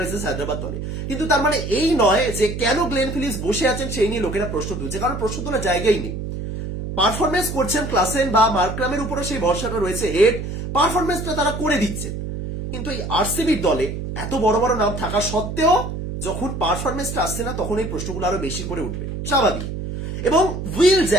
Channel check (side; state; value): right; noise; hum, 6 dB below the sound